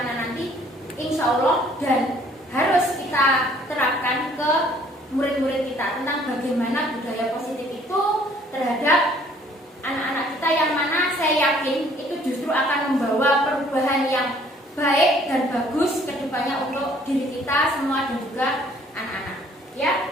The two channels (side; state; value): both; normal; correlation 0.59